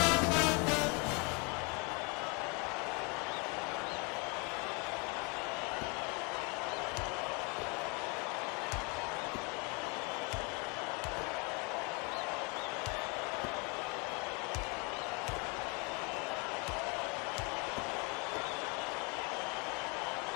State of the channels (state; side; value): quieter; right; 31.5 dB